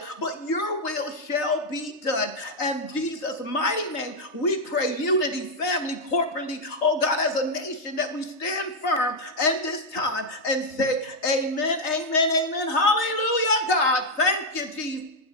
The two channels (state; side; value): late; right; 3.3 ms